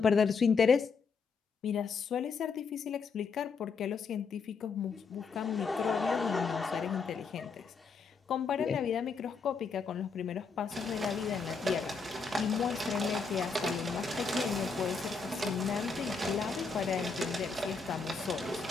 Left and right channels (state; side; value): quieter; right; 5.0 dB